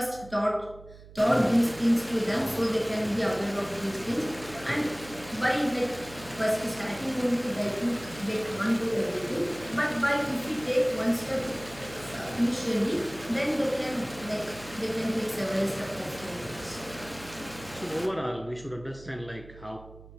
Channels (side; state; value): right; noise; hum, 19 dB below the sound